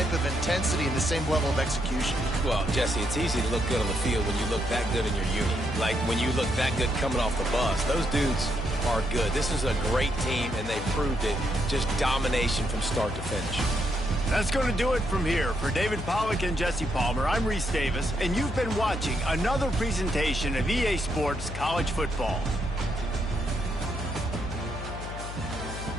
of intensity and the same level of execution. Well, Jesse, it's easy to look good on the field when you look that good in your unit. Like when you look that good coming off the bus. Those dudes are good. This is a great team, and they proved it. Just domination from start to finish. That's going to do it from here. For David Pollack and Jesse Palmer, I'm Reese Davis, and you've been watching another presentation of EA Sports College Football.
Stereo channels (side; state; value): left; noise; hum, 8 dB below the sound